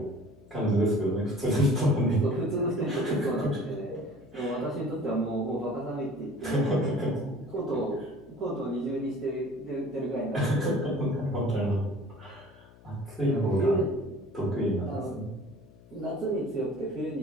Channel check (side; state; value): left; noise; hum, 24 dB below the sound